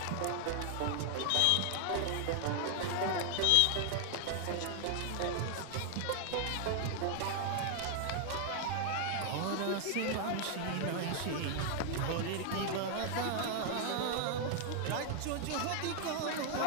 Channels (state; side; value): different; both; correlation 0.00